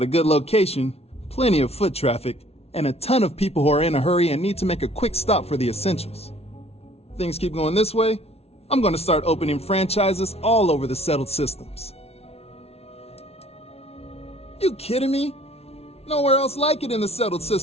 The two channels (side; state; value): right; late; 0.30 ms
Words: a good location, plenty of foot traffic, and a ton of people who are in a hurry and need to make a quick stop for the essentials. Things keep going this way, I'm gonna start opening franchises all over the settled systems. You kidding me? Nowhere else like it in the settled